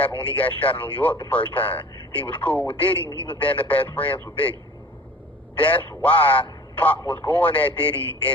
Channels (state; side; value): normal; both; correlation 0.44